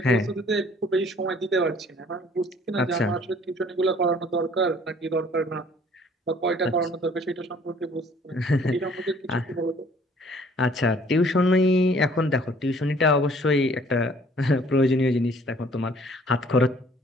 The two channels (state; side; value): normal; both; correlation 0.57